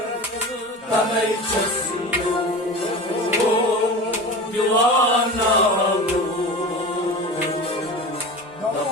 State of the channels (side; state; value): both; normal; correlation 0.31